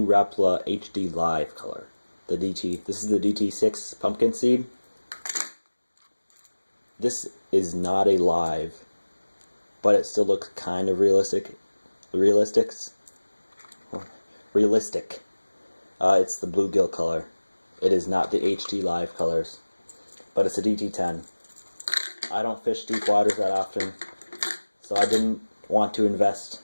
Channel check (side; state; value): both; inverted; correlation -1.00